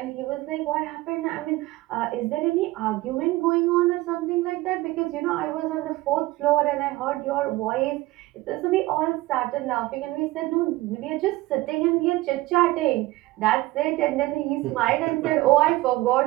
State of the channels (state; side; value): quieter; left; 19.0 dB